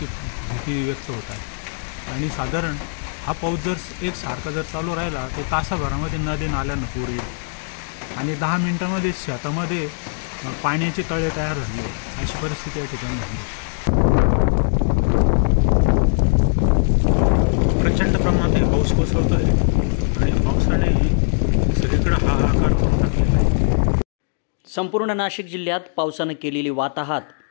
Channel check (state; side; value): silent; right; digital silence